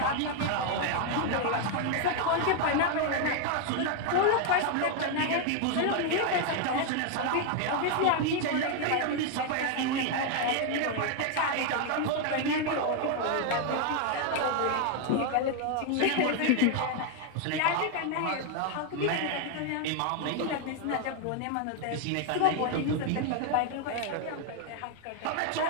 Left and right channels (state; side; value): different; both; correlation 0.01